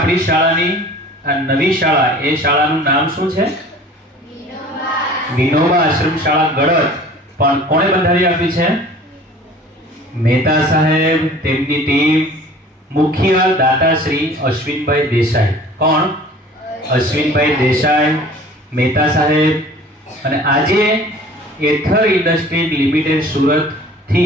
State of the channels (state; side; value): normal; both; correlation 0.46